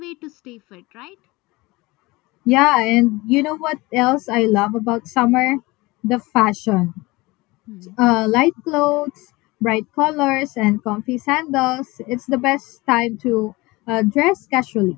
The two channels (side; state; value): right; quieter; 22.2 dB